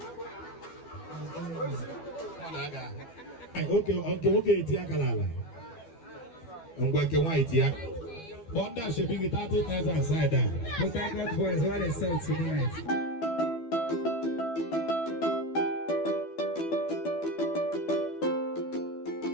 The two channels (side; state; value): right; late; 12 ms